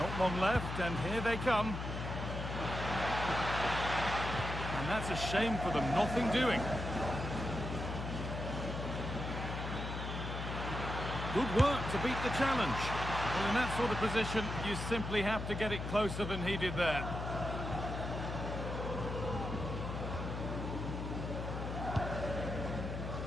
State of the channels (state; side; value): noise; left; hum, 5 dB below the sound